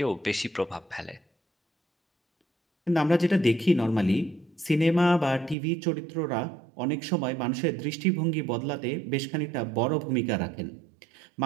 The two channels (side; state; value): left; drops out; at 5.6 s